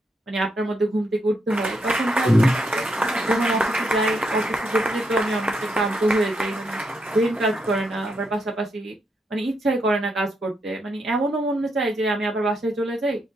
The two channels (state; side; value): normal; both; correlation 0.80